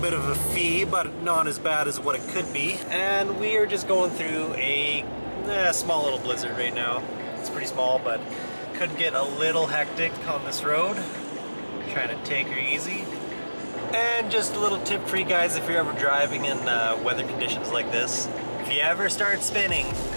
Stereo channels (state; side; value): inverted; both; correlation -1.00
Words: of a fee, but not as bad as what it could be. And we are just going through a small little blizzard right now. It's pretty small, but could get a little hectic on this road. Trying to take her easy. And just a little tip for you guys if you're ever driving in weather conditions like this. If you ever start spinning,